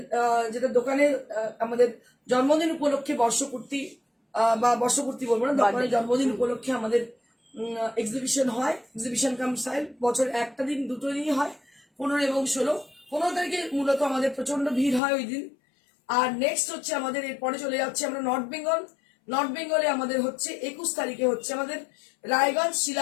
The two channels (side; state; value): right; drops out; at 15.0 s